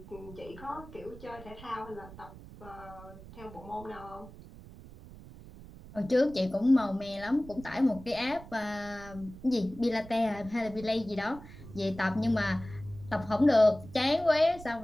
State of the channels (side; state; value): right; noise; rumble, 17 dB below the sound